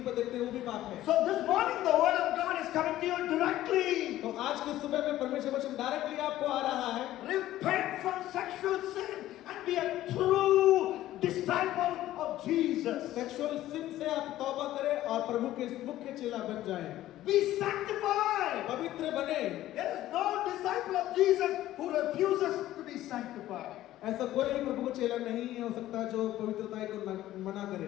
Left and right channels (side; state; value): right; quieter; 14.3 dB